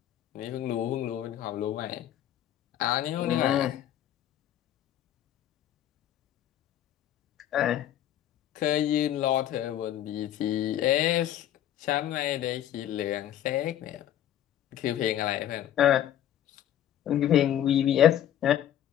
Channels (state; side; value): quieter; right; 11.4 dB